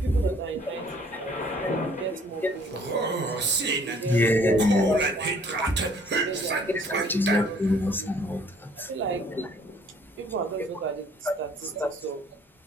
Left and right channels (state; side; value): normal; both; correlation 0.58